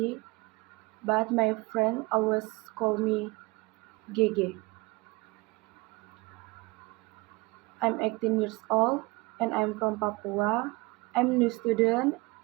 but my friend always call me Gege. I'm 18 years old and I'm from Papua. I'm a new student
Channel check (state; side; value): quieter; left; 23.7 dB